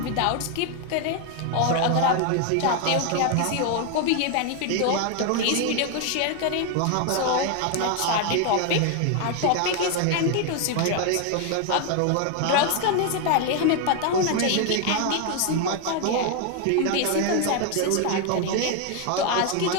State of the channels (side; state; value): both; different; correlation 0.01